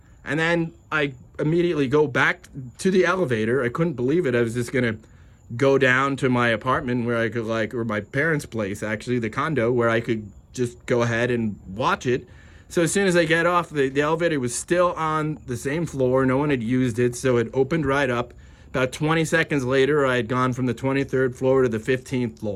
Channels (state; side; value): identical; both; correlation 1.00